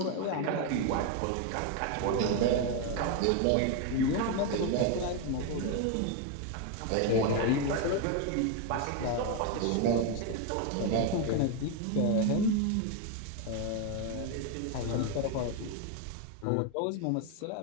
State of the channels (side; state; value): both; different; correlation 0.01